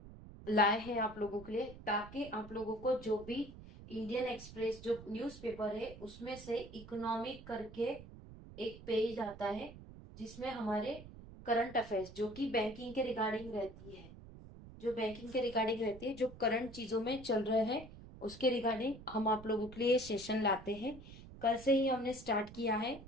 लाए हैं आप लोगों के लिए, ताकि आप लोगों को जो भी इंडियन एक्सप्रेस जो न्यूज़पेपर है उसमें से इकोनॉमिक करके एक पेज आता है, जिसमें हमारे करंट अफेयर्स जो कि बैंकिंग के रिगार्डिंग रहती है, जो करंट चीजों में चल रहे हैं उसके रिगार्डिंग हम आप लोगों के लिए सेशन लाते हैं। कल से ही हमने स्टार्ट किया है।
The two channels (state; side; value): noise; right; rumble, 16 dB below the sound